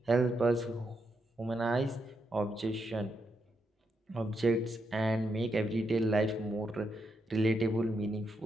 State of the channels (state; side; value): normal; both; correlation 0.82